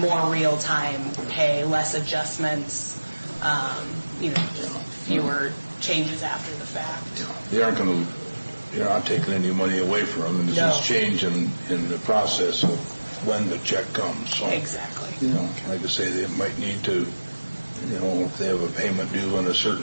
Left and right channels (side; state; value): both; inverted; correlation -1.00